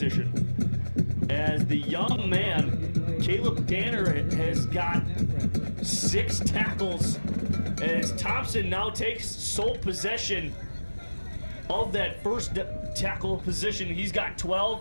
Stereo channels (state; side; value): inverted; both; correlation -1.00